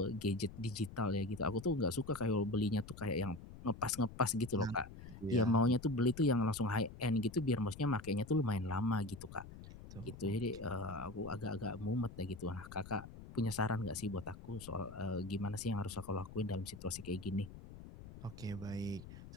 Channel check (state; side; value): noise; left; rumble, 14 dB below the sound